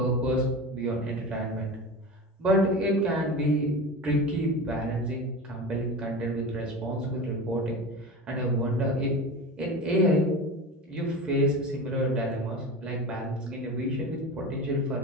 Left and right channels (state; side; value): normal; both; correlation 0.28